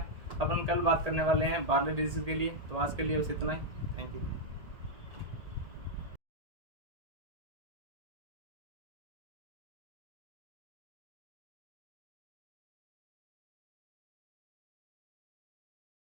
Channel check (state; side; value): late; left; 1.8 ms